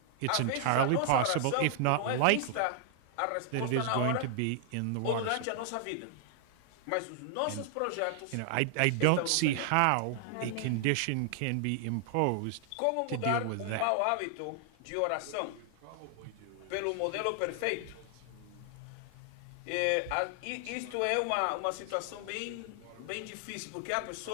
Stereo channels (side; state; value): both; different; correlation 0.00